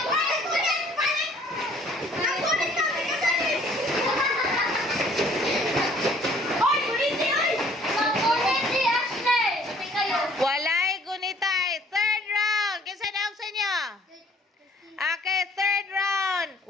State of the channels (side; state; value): both; normal; correlation 0.57